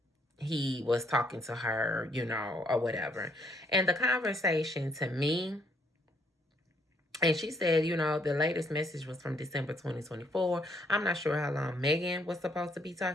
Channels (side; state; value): both; normal; correlation 0.69